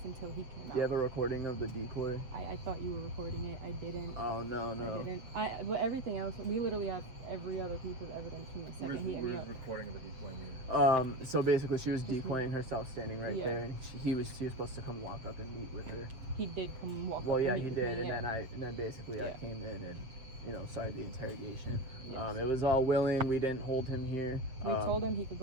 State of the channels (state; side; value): late; left; 7.9 ms